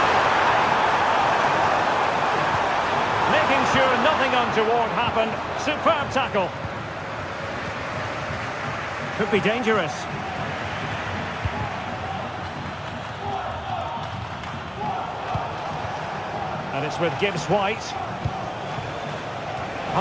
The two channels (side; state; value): both; identical; correlation 1.00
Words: Making sure nothing untoward happened. Superb tackle. Could be dangerous. And it's with Gibbs-White.